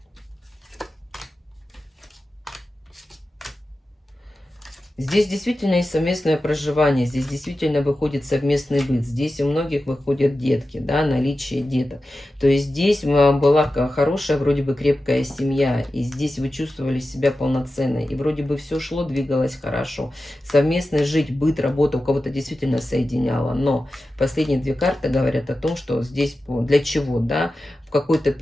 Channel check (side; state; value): both; normal; correlation 0.93